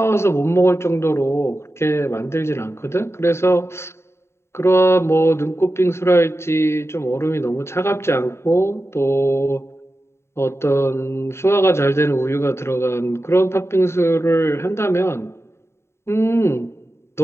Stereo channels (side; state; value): right; late; 0.13 ms